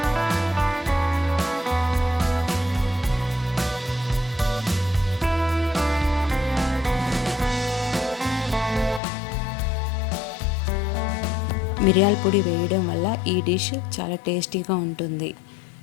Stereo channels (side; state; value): right; drops out; at 9.0 s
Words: మిరియాల పొడి వేయడం వల్ల ఈ డిష్ చాలా టేస్టీగా ఉంటుంది.